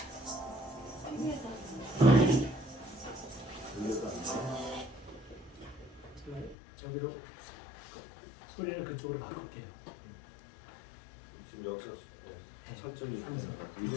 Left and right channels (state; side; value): drops out; right; at 6.6 s